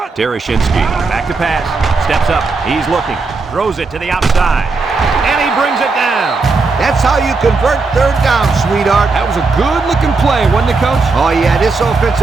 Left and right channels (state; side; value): quieter; left; 4.0 dB